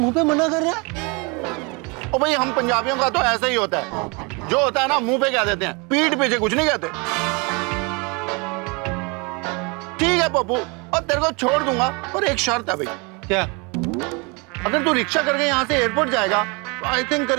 पे मना कर रहा है? ओ भाई, हम पंजाबियों का तो ऐसा ही होता है, जो होता है ना मुंह पे कह देते हैं, पीठ पीछे कुछ नहीं कहते। ठीक है पप्पू, और तेरे को छोड़ दूंगा, पर एक शर्त है भाई। क्या? अगर तू रिक्शा करके यहाँ से एयरपोर्ट जाएगा तो आई थिंक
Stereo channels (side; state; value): left; quieter; 30.1 dB